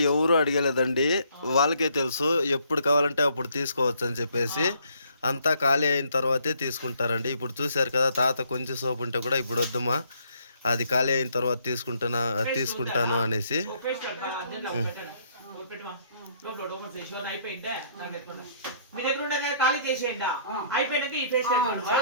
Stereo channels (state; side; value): inverted; both; correlation -0.66